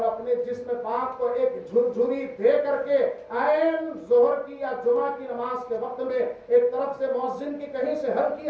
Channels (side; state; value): both; identical; correlation 1.00